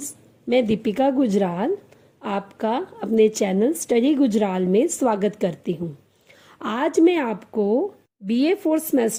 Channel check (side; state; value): both; identical; correlation 1.00